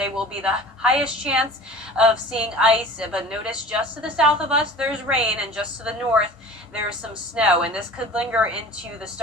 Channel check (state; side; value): normal; both; correlation 0.41